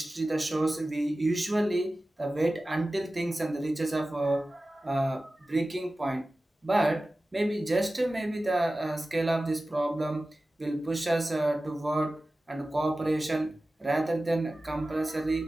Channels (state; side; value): normal; both; correlation 0.96